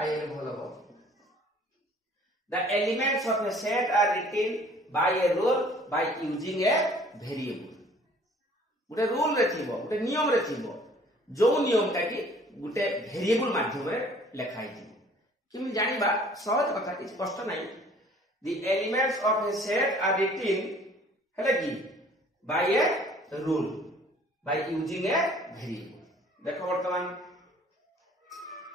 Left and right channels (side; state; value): both; normal; correlation 0.54